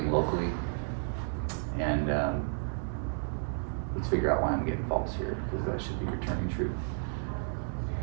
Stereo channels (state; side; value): silent; left; 56 dB below the other